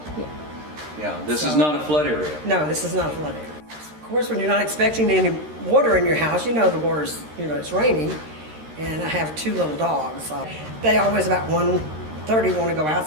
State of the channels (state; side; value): late; left; 13 ms